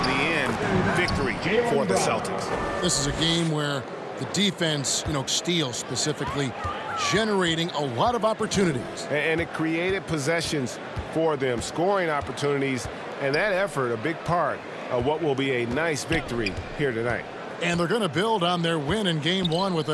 the end, victory for the Celtics. This is a game where the defense, steals specifically, generating a lot of opportunities. And it created possessions for them, scoring opportunities, and that effort, a big part of what will be a nice victory here tonight. And they're going to build on their win in Game 1 with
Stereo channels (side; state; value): both; identical; correlation 1.00